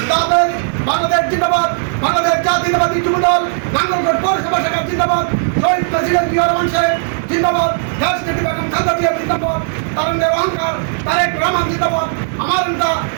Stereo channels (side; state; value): left; silent; digital silence